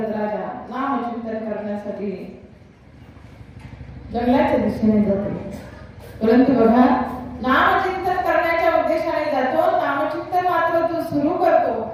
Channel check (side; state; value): both; identical; correlation 1.00